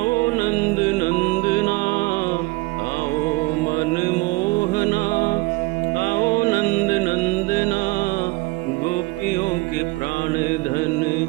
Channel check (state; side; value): quieter; left; 23.3 dB